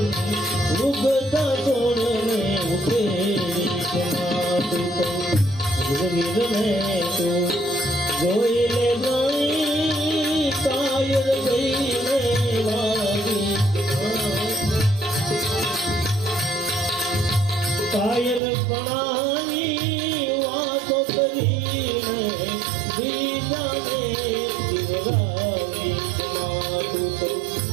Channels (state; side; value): drops out; left; at 18.4 s